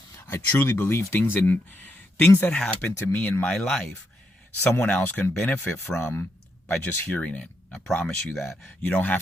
I truly believe things that happen to me in my life, someone else can benefit from by just hearing it. I promise you that. You don't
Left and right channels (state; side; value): normal; both; correlation 0.80